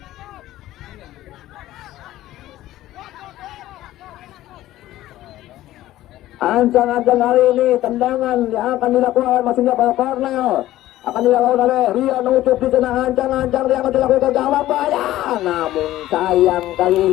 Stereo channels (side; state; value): right; quieter; 14.9 dB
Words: Ancang-ancang kali ini tendangan yang akan dilakukan maksudnya pada Cornel akan dilakukan oleh Rian Ucup di sana. Ancang-ancang yang akan dilakukan ke gawang bahaya, namun sayang kali